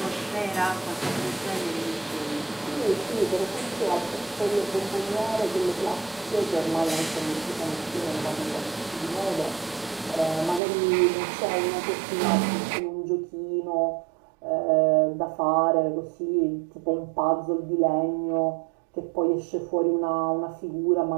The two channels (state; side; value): drops out; left; at 10.6 s